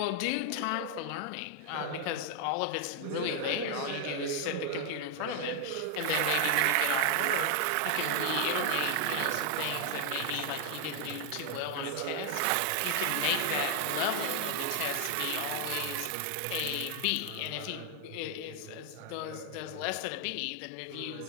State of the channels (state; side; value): different; both; correlation 0.00